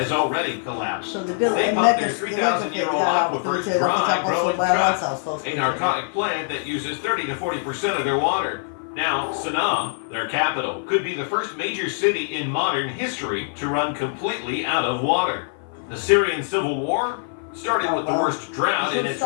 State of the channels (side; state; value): right; silent; 56 dB below the other